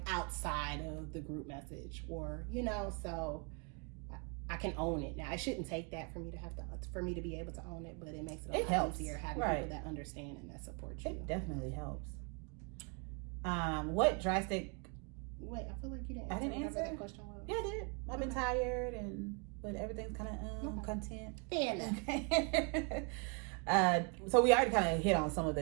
outside of the group message or, so I can own it now. I shouldn't take that for me to be able to own it, but it makes it a lot easier having people that understand and that support you. It definitely helps. What drastic? Wait, I feel like you didn't. I didn't answer that question. Was. Yeah, I did. I've been tired, but everything's kind of content. Fair enough. So we already kind of hit on some of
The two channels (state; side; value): quieter; left; 35.1 dB